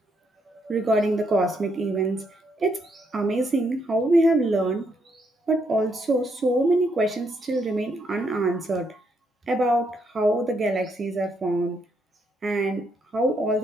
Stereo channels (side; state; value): both; normal; correlation 0.76